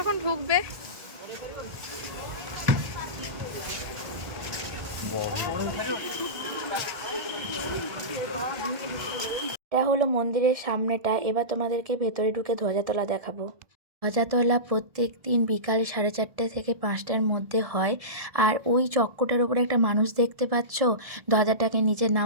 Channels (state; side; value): late; left; 1.7 ms